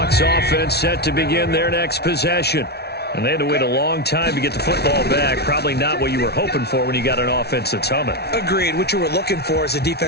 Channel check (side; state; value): right; late; 0.48 ms